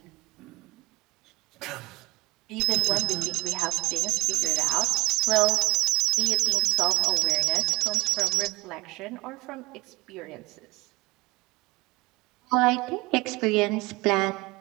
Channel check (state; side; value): quieter; left; 24.0 dB